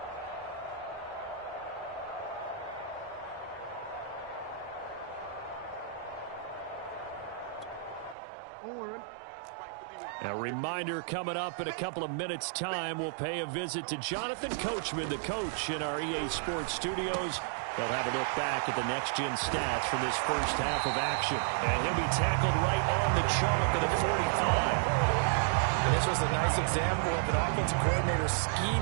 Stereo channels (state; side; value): drops out; left; at 8.2 s